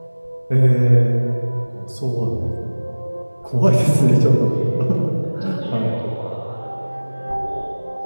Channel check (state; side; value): inverted; both; correlation -1.00